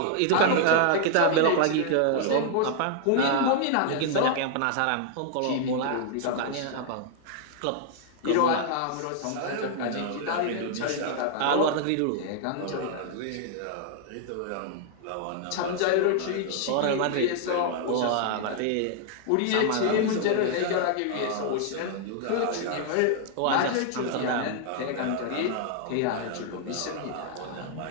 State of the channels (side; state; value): both; different; correlation 0.00